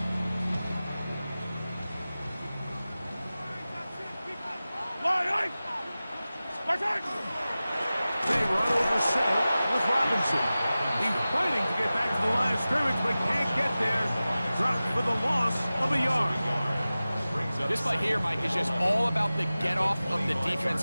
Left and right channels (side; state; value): both; inverted; correlation -0.96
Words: They run over center with Robinson. He's fighting to get back to the line of scrimmage, but can't get there. Dropped for the loss of a yard. This play here, Mike, is just all about the get-off of the